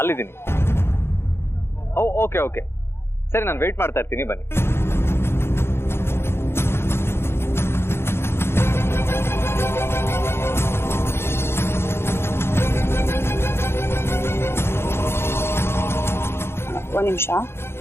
ಓಕೆ ಓಕೆ, ಸರಿ, ನಾನು ವೆಯ್ಟ್ ಮಾಡ್ತಾ ಇರ್ತೀನಿ, ಬನ್ನಿ. ಒಂದ್ ನಿಮಿಷ.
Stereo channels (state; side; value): late; right; 0.12 ms